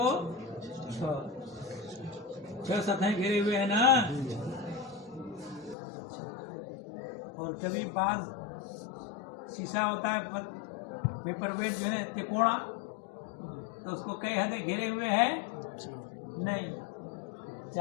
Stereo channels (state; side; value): drops out; right; at 5.8 s